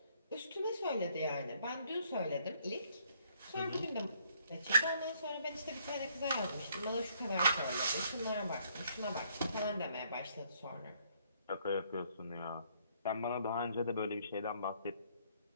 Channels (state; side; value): inverted; both; correlation -0.67